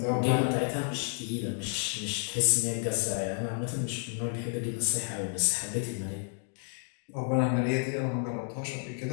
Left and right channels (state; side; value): silent; right; 56 dB below the other